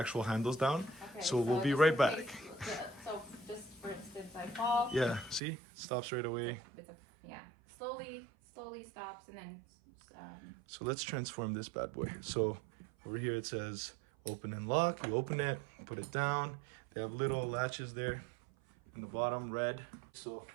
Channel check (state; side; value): drops out; left; at 5.4 s